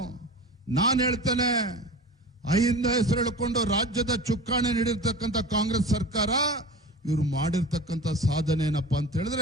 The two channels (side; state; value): both; normal; correlation 0.34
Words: ನಾನು ಹೇಳ್ತೇನೆ, ಅಹಿಂದ ಹೆಸರು ಹೇಳ್ಕೊಂಡು ರಾಜ್ಯದ ಚುಕ್ಕಾಣಿ ನೀಡಿರ್ತಕ್ಕಂಥ ಕಾಂಗ್ರೆಸ್ ಸರ್ಕಾರ ಇವರು ಮಾಡಿರ್ತಕ್ಕಂಥ ಸಾಧನೆ ಏನಪ್ಪಾ ಅಂತ